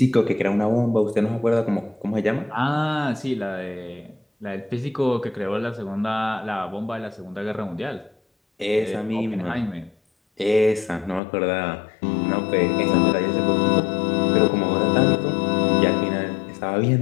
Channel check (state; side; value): drops out; right; at 11.2 s